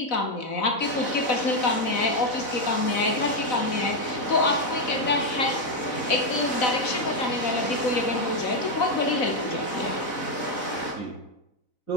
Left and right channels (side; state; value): right; late; 4.0 ms